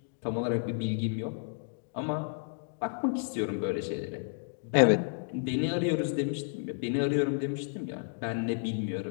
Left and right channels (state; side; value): silent; right; digital silence